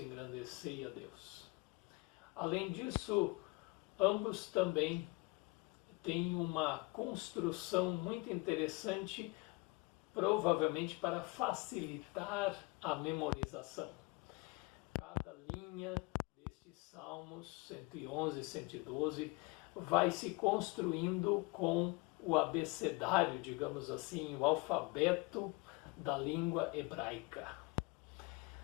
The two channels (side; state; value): right; quieter; 27.0 dB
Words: a Deus. Além disso, ambos também têm uma construção muito interessante, provavelmente para facilitar a memorização. Cada linha destes Salmos 111 e 112 vai se construindo com o abecedário, digamos assim, o alfabeto da língua hebraica.